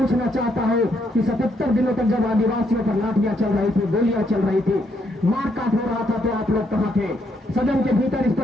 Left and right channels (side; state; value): both; normal; correlation 0.75